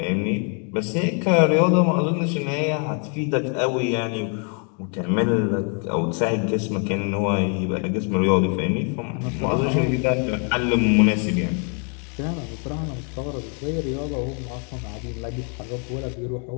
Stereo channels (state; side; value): quieter; right; 39.6 dB